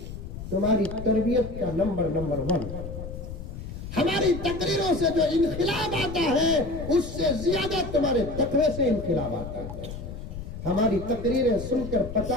तुम्हारी तरबियत का नंबर 1। हमारी तकरीरों से जो इनकलाब आता है उससे ज्यादा तुम्हारे तकवे से इनकलाब आता है। हमारी तकरीरें सुनकर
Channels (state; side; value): noise; left; rumble, 9 dB below the sound